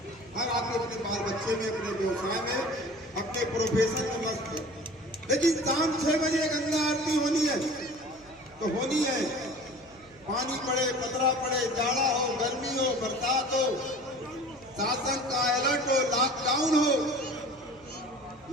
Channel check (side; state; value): right; noise; hum, 27 dB below the sound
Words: हर आदमी अपने बाल बच्चे में, अपने व्यवसाय में, अपने प्रोफेशन में मस्त है, लेकिन शाम 6 बजे गंगा आरती होनी है तो होनी है। पानी पड़े, पतरा पड़े, जाड़ा हो, गर्मी हो, बरसात हो, शासन का अलर्ट हो, लॉकडाउन हो,